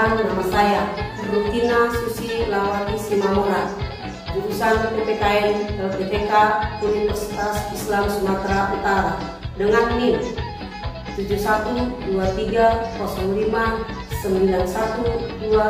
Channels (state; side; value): identical; both; correlation 1.00